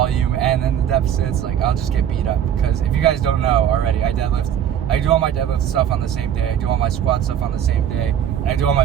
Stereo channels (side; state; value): left; quieter; 9.7 dB